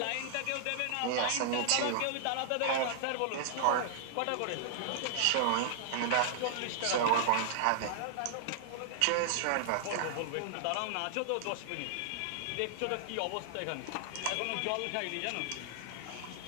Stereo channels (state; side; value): different; both; correlation -0.01